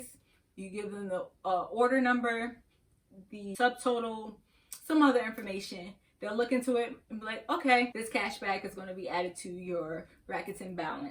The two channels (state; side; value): identical; both; correlation 1.00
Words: You give them the order number, the subtotal, some other information. They'll look into it and be like, okay, this cash back is going to be added to your Rakuten